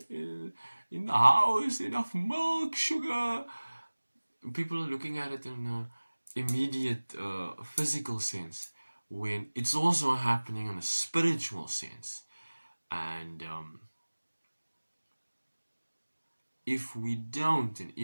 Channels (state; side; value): inverted; both; correlation -1.00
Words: in the house, enough milk, sugar? People are looking at it in an immediate physical sense, when it's also happening in a spiritual sense. And if we don't, and